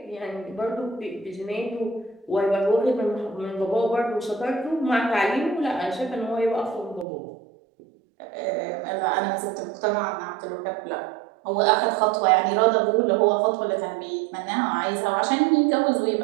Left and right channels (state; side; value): drops out; left; at 7.1 s